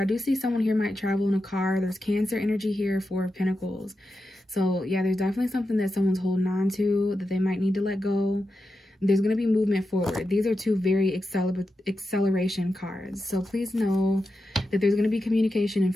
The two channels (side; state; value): both; normal; correlation 0.89